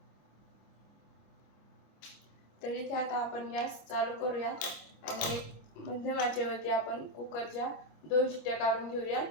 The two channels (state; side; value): late; right; 25 ms